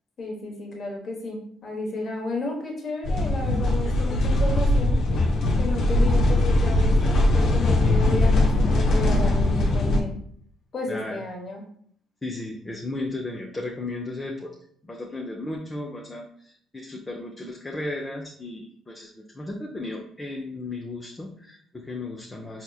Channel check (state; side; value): normal; both; correlation 0.80